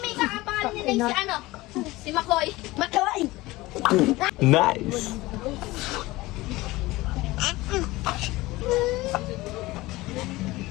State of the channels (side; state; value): right; quieter; 19.6 dB